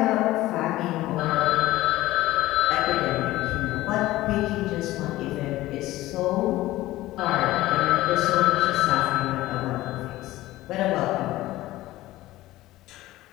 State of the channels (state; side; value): quieter; right; 16.8 dB